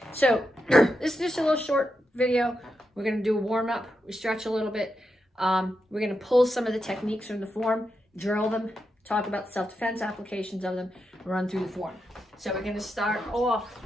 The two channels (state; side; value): normal; both; correlation 0.86